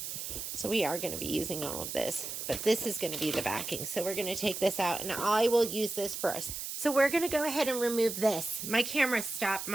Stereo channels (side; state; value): right; noise; hiss, 6 dB below the sound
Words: So we are going to be using all of this, but this is going to be the backing. So we're going to take this out, and I will use this first. So we're going to go ahead and remove this. My camera stopped.